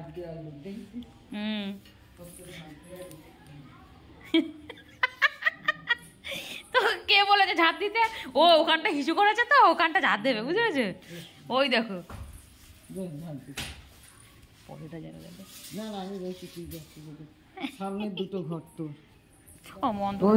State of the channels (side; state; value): both; identical; correlation 1.00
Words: হুম, তো কে বলেছে ঝাঁট দিতে? ও ওখানটা হিসু করেছে, তো ওখানটা ঝাঁট দেবে, বুঝতে পেরেছে? ওই দেখো সামনে দুটো ঘর, তো অমন